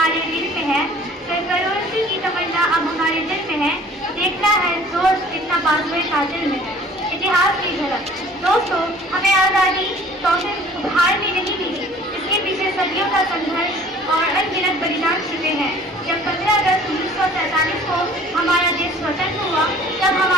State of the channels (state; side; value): normal; both; correlation 0.50